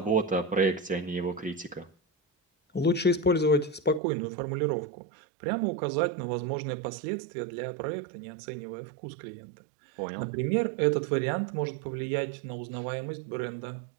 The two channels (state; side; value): drops out; left; at 4.0 s